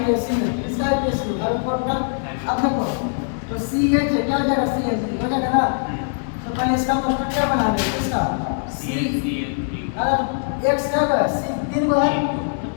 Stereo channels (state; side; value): silent; right; digital silence